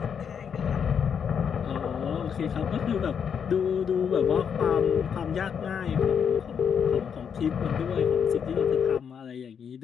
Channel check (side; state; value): right; quieter; 7.3 dB